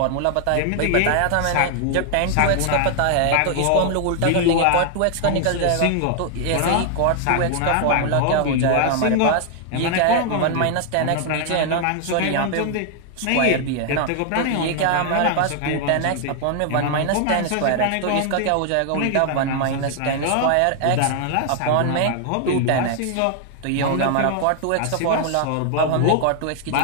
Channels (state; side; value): different; both; correlation 0.00